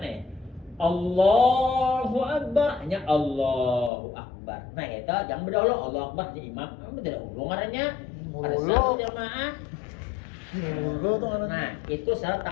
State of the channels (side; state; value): right; drops out; at 3.9 s